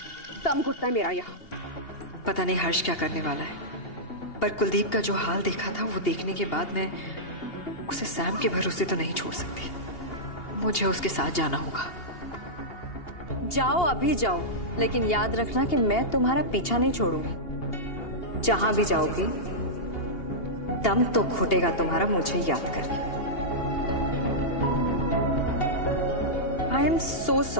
दम घुटता है मेरा यहाँ। पता नहीं हर्ष क्या करने वाला है, पर कुलदीप का जो हाल देखा था वो देखने के बाद मैं उसे सैम के भरोसे तो नहीं छोड़ सकती। मुझे उसके साथ जाना होगा। जाओ, अभी जाओ, लेकिन याद रखना कि मैं तुम्हारा पीछा नहीं छोड़ूंगी। जहां भी जाओगी दम तो घुटेगा तुम्हारा मुझे याद करके। I am so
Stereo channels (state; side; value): late; right; 2.8 ms